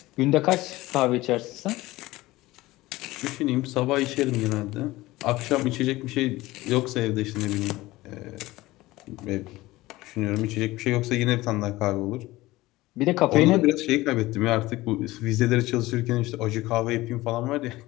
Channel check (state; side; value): quieter; right; 18.7 dB